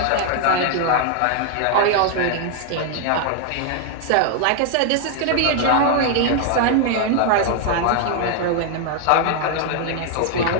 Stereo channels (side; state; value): both; different; correlation 0.00